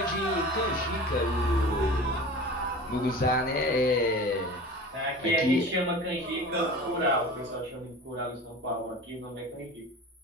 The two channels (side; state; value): both; normal; correlation 0.37